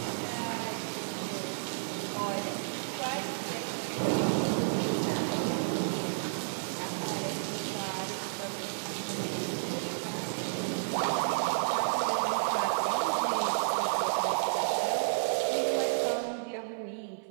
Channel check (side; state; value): left; silent; 57 dB below the other